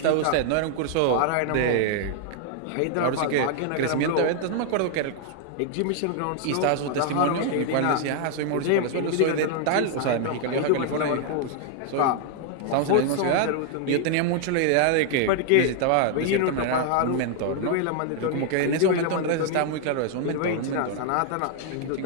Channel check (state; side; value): different; both; correlation 0.00